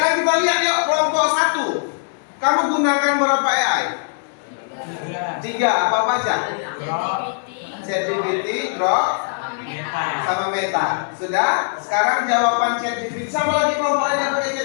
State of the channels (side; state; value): right; silent; 64 dB below the other